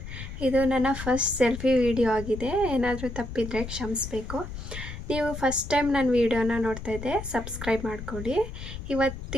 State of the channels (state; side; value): noise; left; rumble, 9 dB below the sound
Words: ಇದು ನನ್ನ first selfie video ಆಗಿದೆ. ಏನಾದರೂ ತಪ್ಪಿದರೆ ಕ್ಷಮಿಸಬೇಕು. ನೀವು ಫಸ್ಟ್ ಟೈಮ್ ನನ್ನ ವಿಡಿಯೋನ ನೋಡ್ತಾ ಇದ್ದೆ, ಸಬ್ಸ್ಕ್ರೈಬ್ ಮಾಡ್ಕೊಳ್ಳಿ.